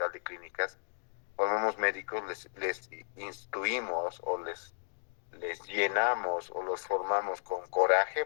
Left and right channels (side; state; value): right; silent; digital silence